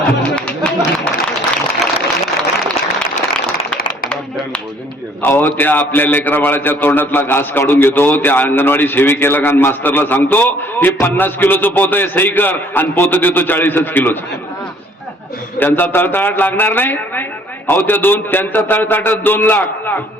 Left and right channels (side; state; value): both; normal; correlation 0.59